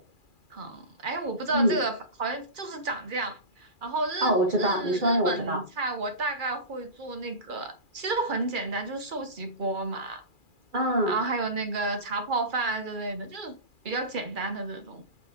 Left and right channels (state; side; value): late; left; 2.4 ms